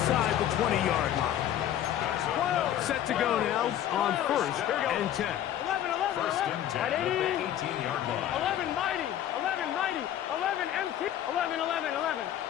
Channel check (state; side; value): quieter; right; 11.2 dB